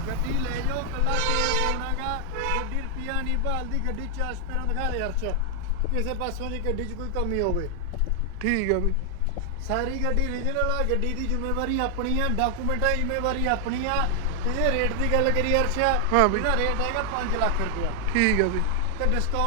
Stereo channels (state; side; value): different; both; correlation 0.00